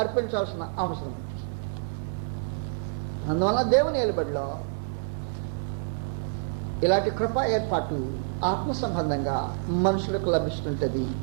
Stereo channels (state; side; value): silent; left; digital silence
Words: అర్పించాల్సిన అవసరం ఉంది. అందువల్ల దేవుని ఏలుబడిలో ఇలాంటి కృపా ఏర్పాటు ఆత్మ సంబంధంగా మనుషులకు లభిస్తుంటుంది.